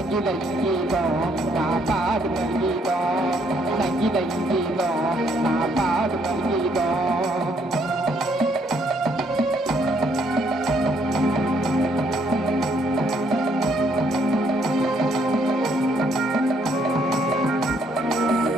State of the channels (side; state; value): both; normal; correlation 0.69